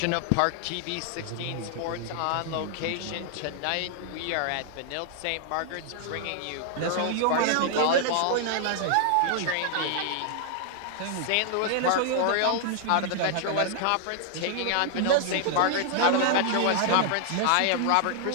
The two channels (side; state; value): both; different; correlation 0.00